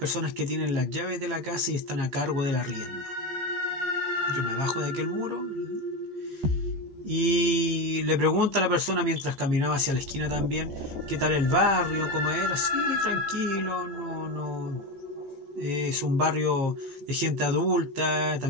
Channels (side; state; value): left; late; 14 ms